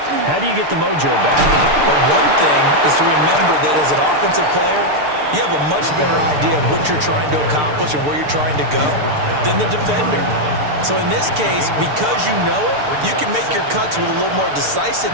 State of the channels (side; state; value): left; late; 6.7 ms